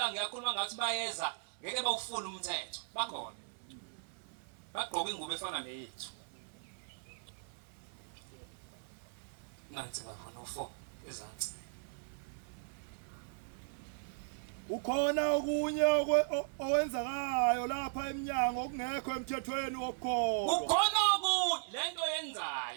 ngiyakhuluma ngathi bayeza ngeke bawufuna umthetho. Bakhona. Bagqoka ingubo efana neyethu. Nansi baba 104 ezansi. Ukhona okunye owenzakayo lapha eminyango okungekho emthethweni wokukholwa. Ukhona okunye lento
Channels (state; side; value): silent; left; 53 dB below the other